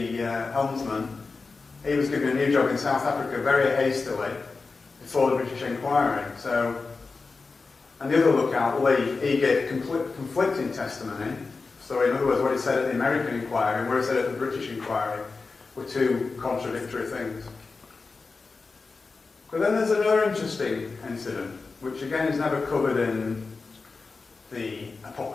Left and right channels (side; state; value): right; quieter; 4.2 dB